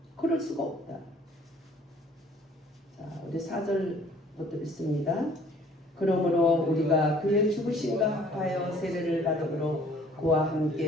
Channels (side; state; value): both; normal; correlation 0.56